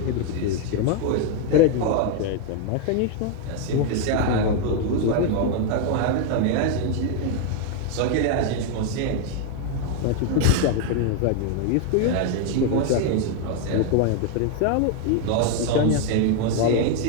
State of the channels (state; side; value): different; both; correlation 0.01